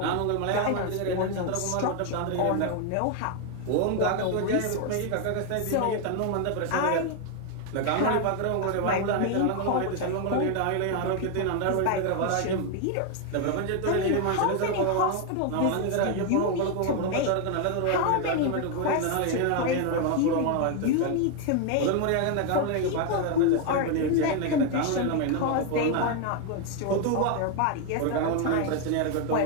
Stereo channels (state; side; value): different; both; correlation 0.01